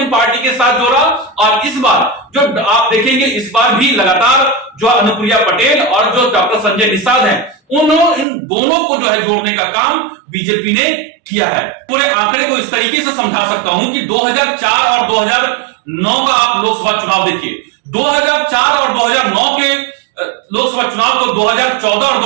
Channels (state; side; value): drops out; left; at 8.2 s